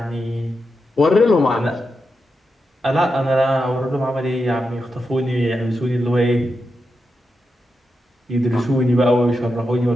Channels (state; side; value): normal; both; correlation 0.87